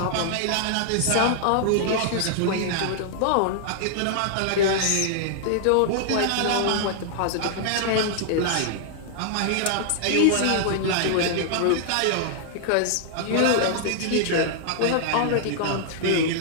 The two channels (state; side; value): different; both; correlation -0.01